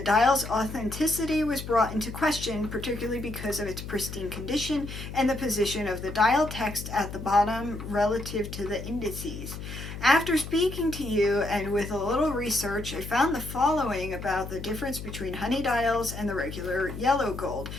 dial's authenticity was brought into question, particularly because of its pristine condition and the position of the dial text at the bottom relative to the indices. After speaking to you and with a little research, I found the following about the difference between honey dials and the regular yellow gold.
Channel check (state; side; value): noise; left; hum, 9 dB below the sound